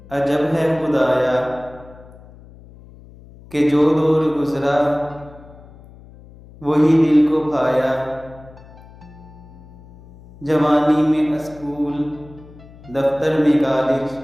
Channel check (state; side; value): noise; left; hum, 21 dB below the sound